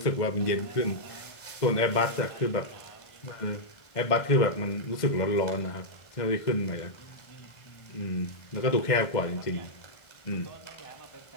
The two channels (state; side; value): late; right; 1.5 ms